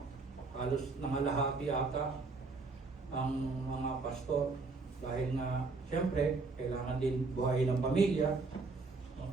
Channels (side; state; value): left; quieter; 4.0 dB